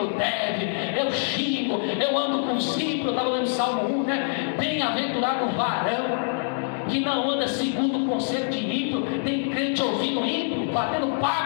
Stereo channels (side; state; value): right; silent; digital silence